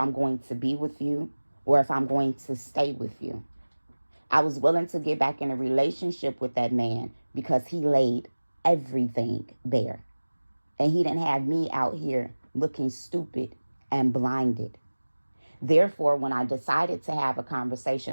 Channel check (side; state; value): both; inverted; correlation -1.00